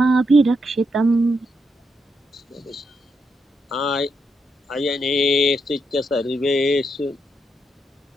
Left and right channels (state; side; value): normal; both; correlation 0.81